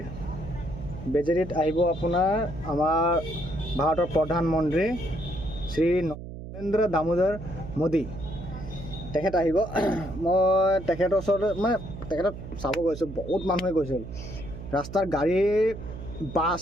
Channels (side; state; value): right; noise; hum, 11 dB below the sound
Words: বেজেটিত আহিব আপোনাৰ আমাৰ ভাৰতৰ প্ৰধানমন্ত্ৰী শ্ৰী নৰেন্দ্ৰ দামোদৰ মোদী তেখেত আহিব মই তেখেতৰ ওচৰত মানে তেখেতক চাব গৈছোঁ বহুত মানুহে গৈছিল ৰাস্তাৰ গাড়ী